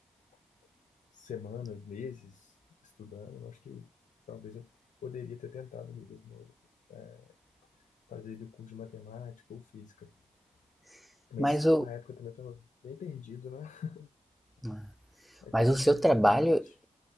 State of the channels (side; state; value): both; normal; correlation 0.96